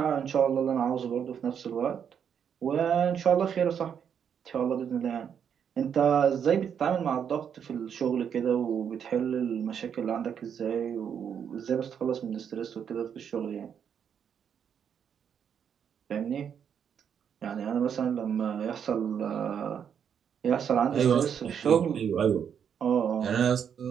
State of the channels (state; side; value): quieter; left; 7.9 dB